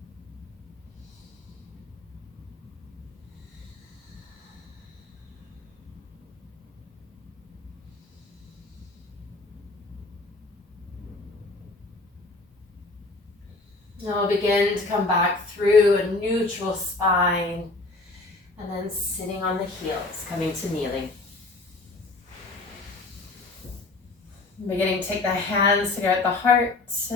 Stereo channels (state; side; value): quieter; right; 3.2 dB